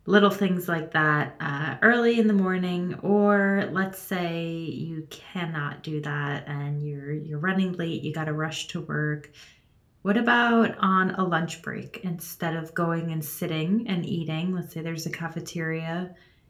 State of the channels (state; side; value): identical; both; correlation 1.00